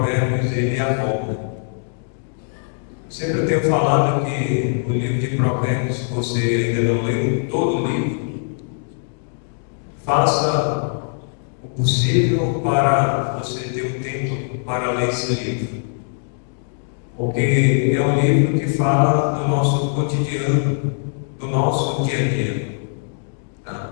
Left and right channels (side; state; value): right; silent; digital silence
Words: ele aborda. Sempre tenho falado que o livro de Provérbios, se você ainda não leu todo o livro, faça o possível para você ter um tempo para ler esse livro. Porque é um livro que fala do nosso cotidiano, do nosso dia a dia.